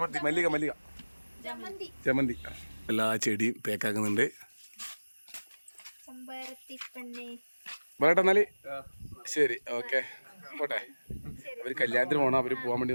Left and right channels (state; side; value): inverted; both; correlation -1.00